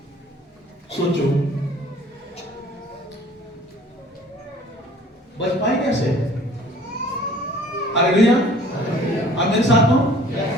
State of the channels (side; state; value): both; normal; correlation 0.52